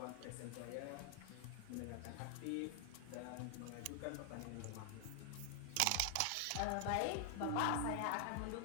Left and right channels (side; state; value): both; different; correlation 0.00